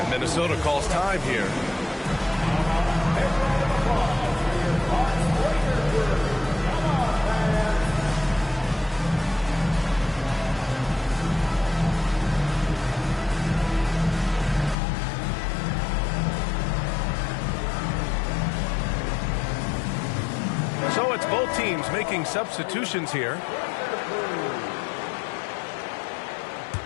Minnesota calls time here. So it's both teams making substitutions here.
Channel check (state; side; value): drops out; right; at 14.8 s